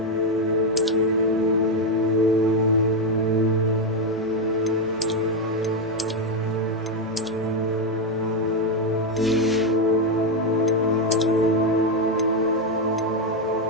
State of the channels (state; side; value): normal; both; correlation 0.05